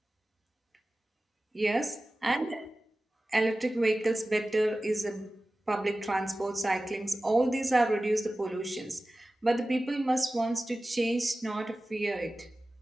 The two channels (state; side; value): normal; both; correlation 0.96